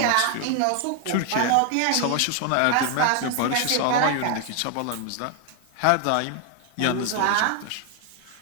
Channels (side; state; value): both; different; correlation 0.00